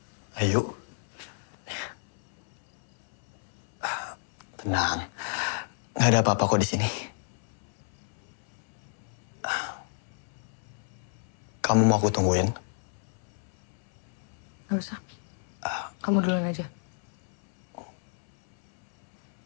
Ayo. Tenang. Nggak ada apa-apa kok di sini. Kamu mau aku tungguin? Gak usah. Kamu duluan aja.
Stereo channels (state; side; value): silent; right; 58 dB below the other